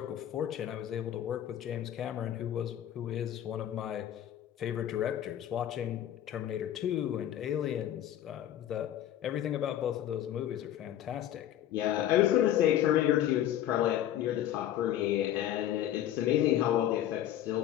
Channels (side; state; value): right; quieter; 11.7 dB